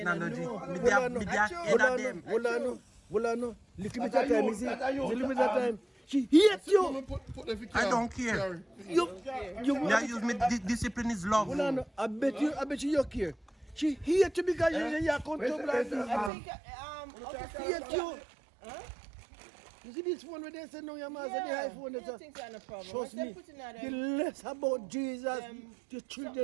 know. Me Hold on, there no. head of them. Hold on. Little bit of time, you see? Little bit of time. She hates you. I don't care. You Me I use me discipline is love. Hold on. I bet you care. She hates you because you are comfortable like this. I think She hates you. You see this one where they say no, your man said the iPhone. I think that's no problem. Trust Once they me. put in that, The less about Jesus, the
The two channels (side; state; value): left; drops out; at 16.3 s